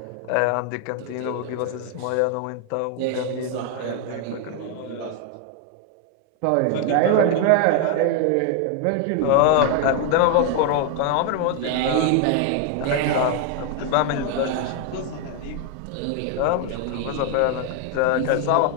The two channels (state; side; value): different; both; correlation 0.01